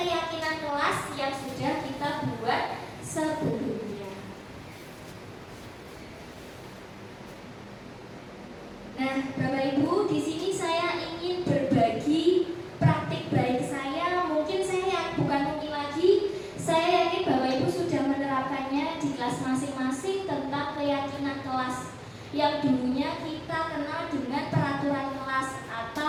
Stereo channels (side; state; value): both; identical; correlation 1.00